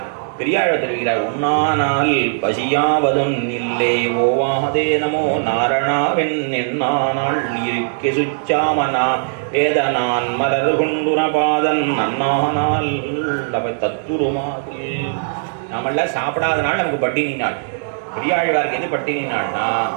பெரியாழ்வார் தெரிவிக்கிறார். உண்ணானால் பசியாவதும் இல்லை ஓவாதே நமோ நாரணாவென் என்னானால் இருக்கே சுச்சாமனா வேதனான் மலர் கொண்டுன பாதன் நன்னானால் அவை தத்துருமாது. நாமெல்லாம் சாப்பிடாதனால நமக்கு பட்டினி நாள். பெரியாழ்வாருக்கு எது பட்டினி நாள்னா,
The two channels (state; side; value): silent; left; digital silence